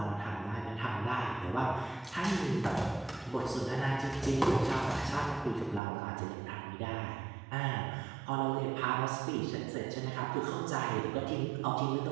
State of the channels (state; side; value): drops out; left; at 5.8 s